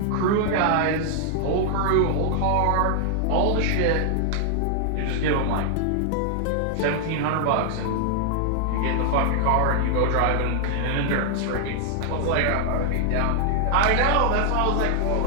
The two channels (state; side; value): different; both; correlation -0.01